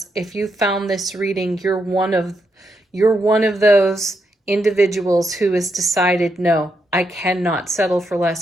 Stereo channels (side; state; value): both; normal; correlation 0.81